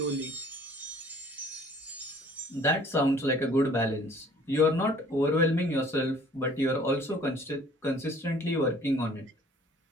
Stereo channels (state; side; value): normal; both; correlation 0.53